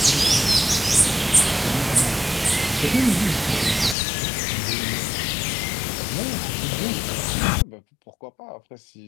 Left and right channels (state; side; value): drops out; right; at 4.0 s